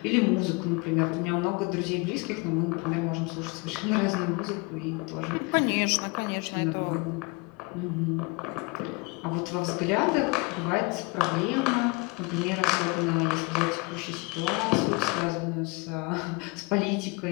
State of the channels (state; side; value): quieter; right; 28.2 dB